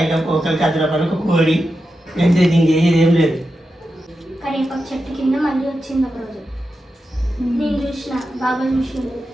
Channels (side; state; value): both; normal; correlation 0.89